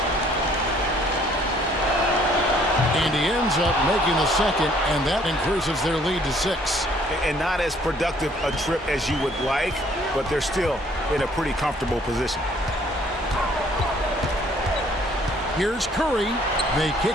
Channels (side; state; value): both; normal; correlation 0.61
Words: ends up making the second, and that increases their lead to 6. And not as productive a trip as you would like, but they're still in a pretty comfortable position. Here's Curry. They